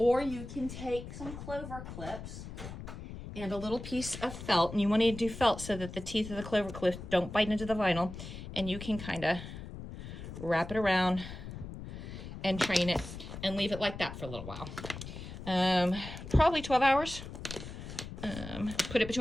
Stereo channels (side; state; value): left; noise; rumble, 10 dB below the sound